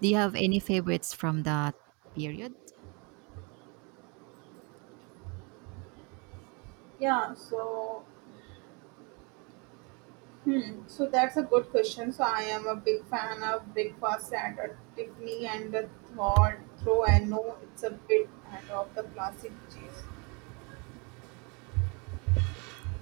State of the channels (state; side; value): quieter; left; 31.7 dB